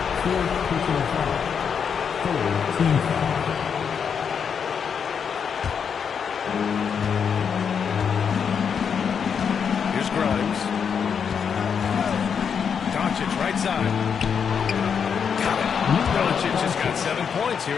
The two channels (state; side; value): quieter; right; 6.9 dB